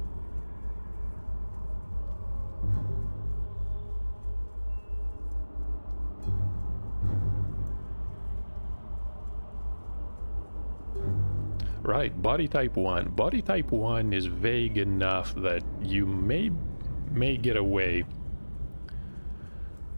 Right, body type 1. Body type 1 is vague enough that you may get away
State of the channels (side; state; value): both; inverted; correlation -1.00